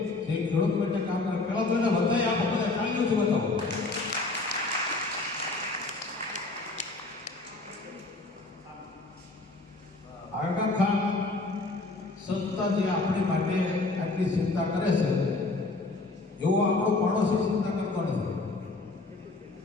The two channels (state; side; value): quieter; right; 3.3 dB